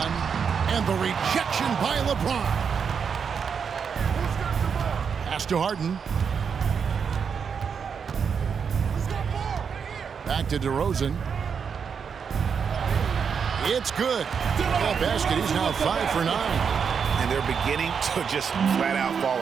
And the rejection by LeBron. Pass to Harden. Back to DeRozan. It's good. That basket, he's now 5 for 9. And they're beginning to just flat out fall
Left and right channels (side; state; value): left; quieter; 6.5 dB